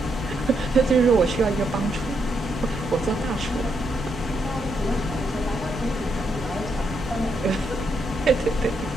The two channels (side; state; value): both; normal; correlation 0.79